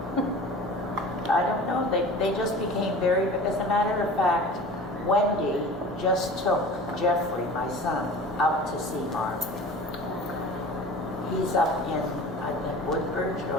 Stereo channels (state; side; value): normal; both; correlation 0.39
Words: I don't know, they just became very, as a matter of fact, Wendy just took Jeffrey, my son, up to see Marvin. He's up in, I think, Woodbridge